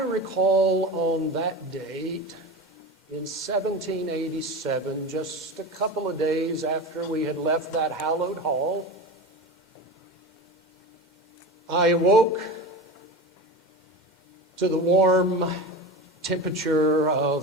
on that date in 1787, just a couple of days after we had left that hallowed hall, I awoke to the warm temperature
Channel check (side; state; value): both; normal; correlation 0.27